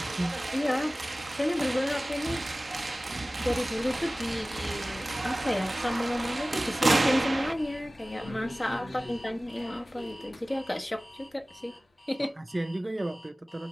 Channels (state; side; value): normal; both; correlation 0.97